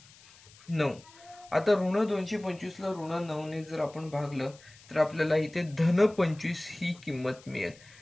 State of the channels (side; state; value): left; noise; hiss, 24 dB below the sound